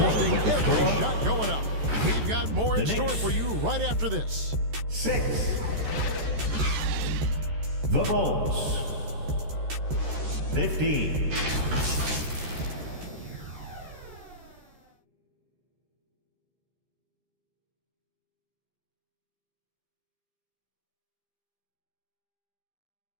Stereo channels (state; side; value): late; left; 14 ms